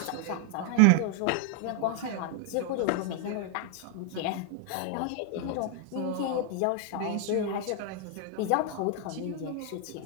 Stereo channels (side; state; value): both; different; correlation 0.00